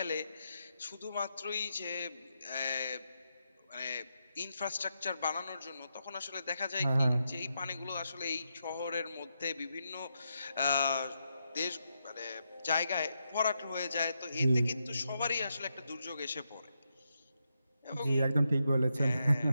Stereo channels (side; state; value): both; inverted; correlation -0.84